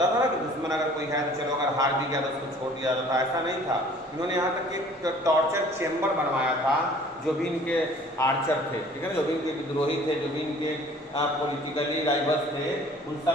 था ना कि दुश्मन अगर कोई है तो चलो अगर हार भी गया तो उसको छोड़ दिया जाता था, ऐसा नहीं था। इन्होंने यहाँ तक एक टॉर्चर चेम्बर बनवाया था, जो भी इनके आर्चर थे, ठीक है ना, जो भी इनके विद्रोही थे, जो भी इनके पॉलिटिकली राइवल्स थे, उन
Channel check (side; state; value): both; normal; correlation 0.51